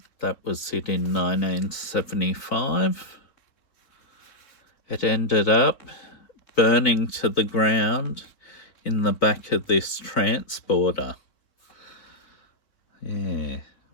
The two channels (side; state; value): right; late; 3.9 ms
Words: that was it in 1975. It ended up burning to the ground in the back of this transporter. Yeah,